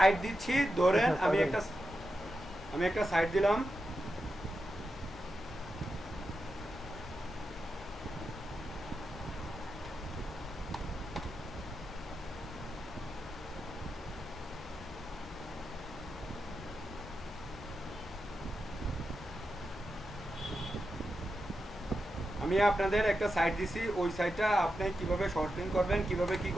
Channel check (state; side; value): normal; both; correlation 0.88